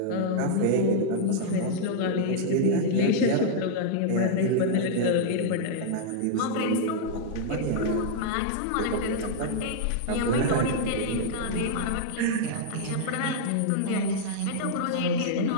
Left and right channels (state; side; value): different; both; correlation -0.01